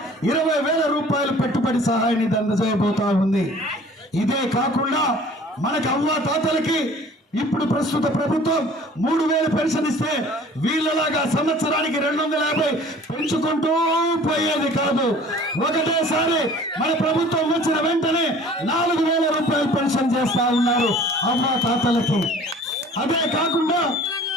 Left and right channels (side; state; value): both; normal; correlation 0.49